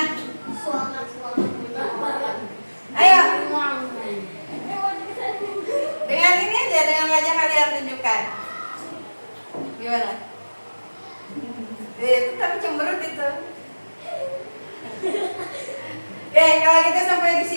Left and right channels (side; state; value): both; inverted; correlation -1.00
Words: Ayo. Dengan ini aja, dengan wajah kalian tunjukkan. Gimana? Itu tapi cemberut itu. Oke, kalau gitu sampai di